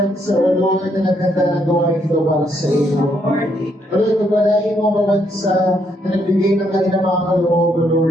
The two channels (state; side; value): normal; both; correlation 0.74